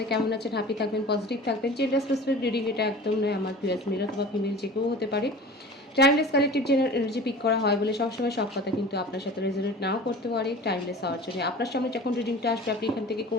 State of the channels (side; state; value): both; normal; correlation 0.39